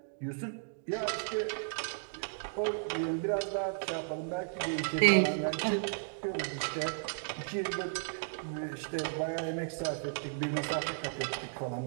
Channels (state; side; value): silent; left; digital silence